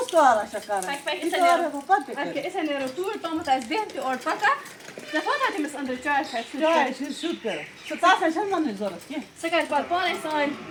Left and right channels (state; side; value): identical; both; correlation 1.00